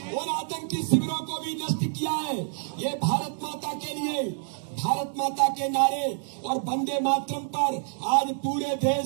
उन आतंकी शिविरों को भी नष्ट किया है। ये भारत माता के लिए, भारत माता के नारे और वंदे मातरम पर आज पूरे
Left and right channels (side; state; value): left; silent; digital silence